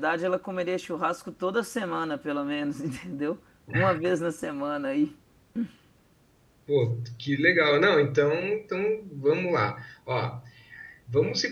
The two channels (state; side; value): identical; both; correlation 1.00